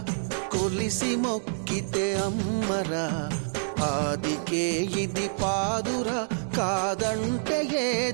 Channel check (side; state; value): left; silent; digital silence